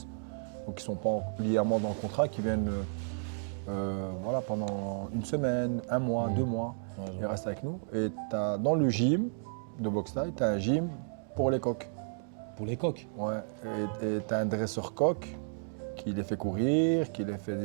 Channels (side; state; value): left; silent; digital silence